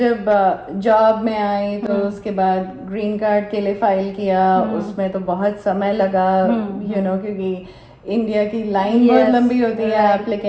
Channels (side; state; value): both; identical; correlation 1.00